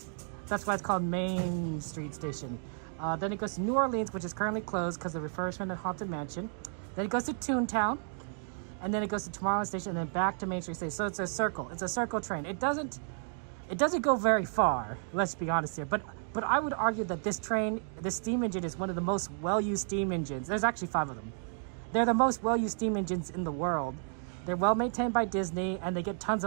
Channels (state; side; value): silent; left; 56 dB below the other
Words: That's why it's called Main Street Station. Then it goes to New Orleans, which is currently closed because of the refurbishment of Haunted Mansion. Then it goes to Toontown. And then it goes to Tomorrowland Station and then back to Main Street Station. So it's a circle. It's a circle train. It doesn't It doesn't go very far, let's be honest here, but I would argue that this steam engine is one of the most well-used steam engines. There's actually 5 of them. They're the most well-used steam engines in the world. They're well maintained by Disney, and they get tons